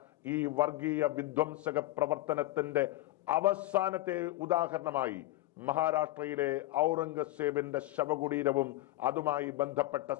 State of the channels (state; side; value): quieter; right; 17.1 dB